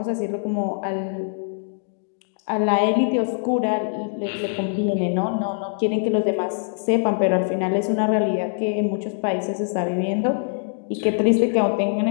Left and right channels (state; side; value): silent; right; digital silence